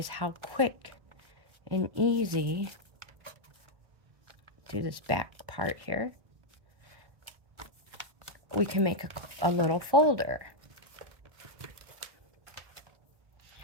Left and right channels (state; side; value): late; left; 1.1 ms